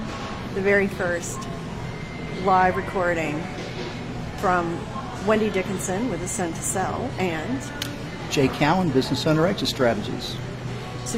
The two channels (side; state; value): both; identical; correlation 1.00